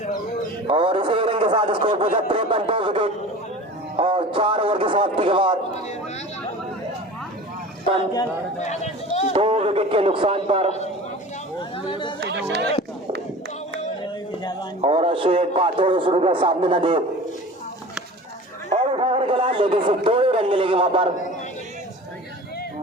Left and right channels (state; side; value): normal; both; correlation 0.38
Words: और इसी रन के साथ स्कोर पहुंचा 53, 2 विकेट और 4 ओवर की समाप्ति के बाद 2 विकेट के नुकसान पर। और अश्विन पाथोड़ शुरू का सामने न दे और उठाकर खेला लेकिन सिर्फ 2 ही रन मिलेंगे वहां पर।